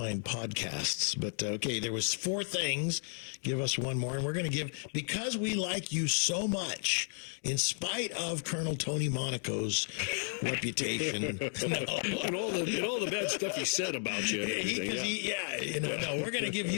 podcasts. But okay, there was 4 things. Give us one more, and we're going to give, because we like you so much, in spite of Colonel Tony Monaco's reputation, and all the bad stuff he said about you. And everything, we're going to give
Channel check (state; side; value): silent; right; 56 dB below the other